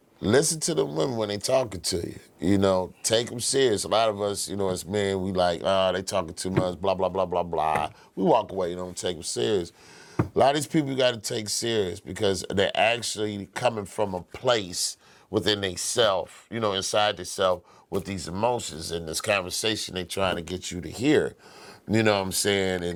Listen to the women when they talking to you. Take them serious. A lot of us, as men, we like, they talking too much, blah, blah, blah, blah, blah. We walk away, don't take them serious. A lot of these people you got to take serious because they're actually coming from a place within themselves, inside themselves with these emotions and this conversation they're trying to get you to hear. You know what I'm saying?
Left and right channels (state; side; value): identical; both; correlation 1.00